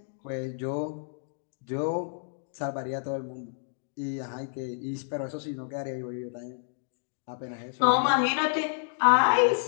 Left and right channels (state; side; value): silent; right; digital silence